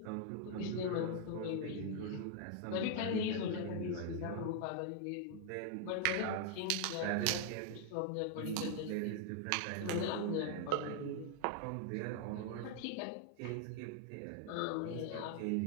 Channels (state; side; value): different; both; correlation 0.00